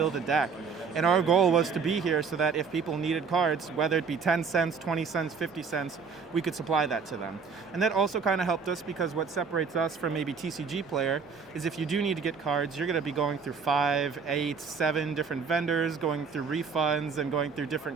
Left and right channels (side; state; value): left; quieter; 5.5 dB